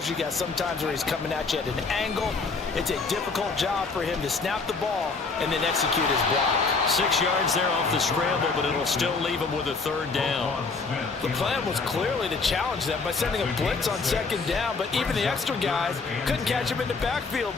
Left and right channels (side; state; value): right; quieter; 4.3 dB